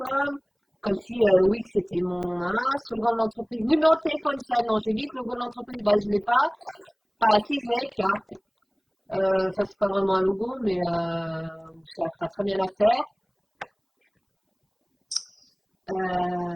Comme si oui, c'était mon slogan de l'entreprise. Numéro de téléphone, ça, non, j'ai dit que le logo de l'entreprise, bah, je ne l'ai pas. Enfin, si, je l'ai, carte. Ça, c'est pas vraiment un logo, mais ça fera très bien l'affaire.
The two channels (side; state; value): both; identical; correlation 1.00